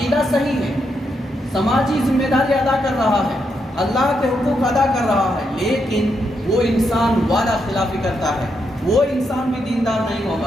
صحیح ہے، سماجی ذمہ داری ادا کر رہا ہے، اللہ کے حقوق ادا کر رہا ہے، لیکن وہ انسان وعدہ خلافی کرتا ہے، وہ انسان بھی دیندار نہیں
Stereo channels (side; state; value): both; normal; correlation 0.81